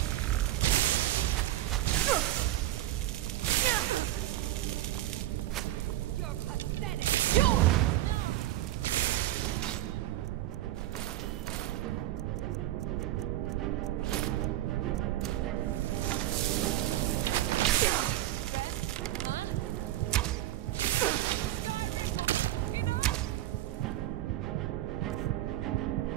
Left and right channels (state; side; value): quieter; left; 14.5 dB